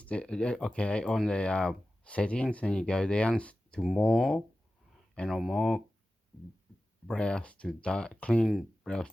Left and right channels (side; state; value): both; normal; correlation 0.94